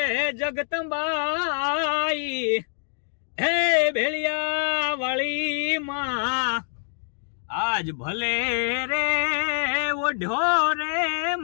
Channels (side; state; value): right; silent; digital silence